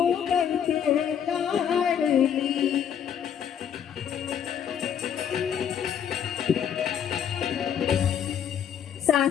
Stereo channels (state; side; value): quieter; right; 8.6 dB